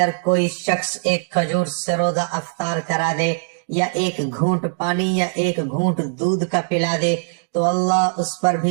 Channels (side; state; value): left; silent; digital silence